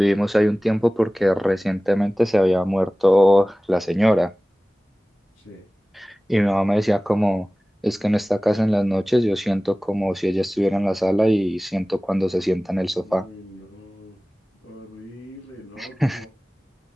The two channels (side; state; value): both; normal; correlation 0.98